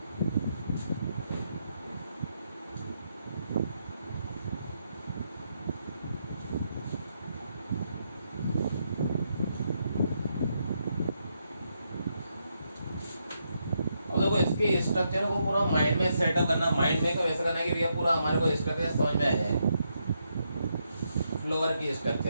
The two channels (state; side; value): inverted; both; correlation -0.80